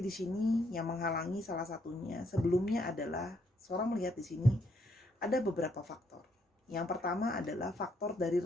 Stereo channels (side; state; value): both; normal; correlation 0.73